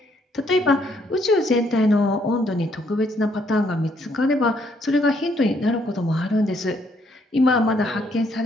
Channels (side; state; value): both; normal; correlation 0.70